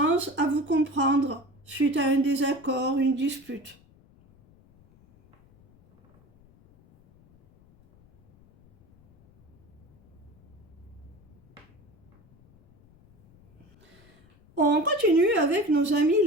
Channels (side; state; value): left; noise; rumble, 29 dB below the sound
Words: à vous comprendre suite à un désaccord, une dispute. On continue avec nos amis